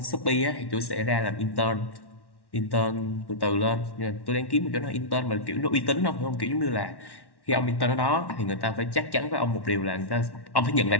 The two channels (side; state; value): right; late; 1.1 ms